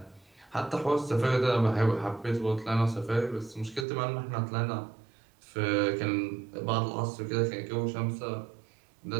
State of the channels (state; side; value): drops out; left; at 3.9 s